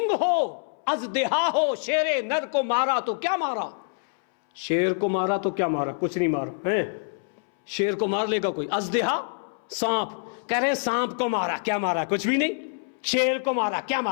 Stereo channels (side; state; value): right; silent; 61 dB below the other